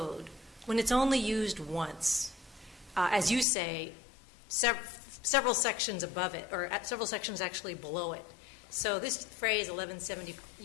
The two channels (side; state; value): right; drops out; at 3.5 s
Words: when it's only used once? As you say, several sections above it, or several sections actually below it. So this phrase 1170